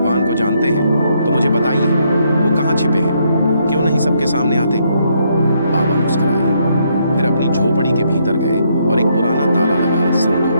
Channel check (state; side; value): inverted; both; correlation -0.73